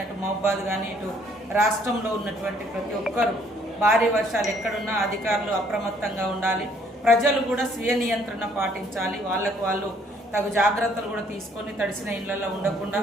అటు మహబాద్ కానీ ఇటు రాష్ట్రంలో ఉన్నటువంటి ప్రతి ఒక్కరు భారీ వర్షాలు ఎక్కడున్నా అధికారులు అప్రమత్తంగా ఉండాలి. ప్రజలు కూడా స్వీయ నియంత్రణ పాటించాలి. వాళ్ళకు వాళ్ళు తగు జాగ్రత్తలు కూడా తీసుకొని తడిసిన ఇళ్లలో ఉండకుండా,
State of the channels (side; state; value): both; normal; correlation 0.64